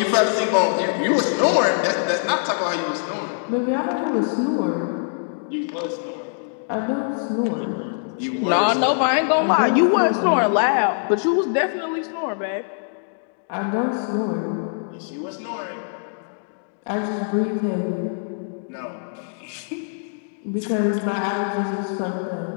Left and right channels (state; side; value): silent; right; digital silence